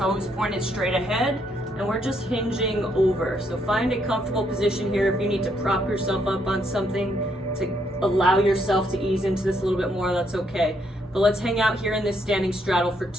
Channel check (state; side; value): normal; both; correlation 0.73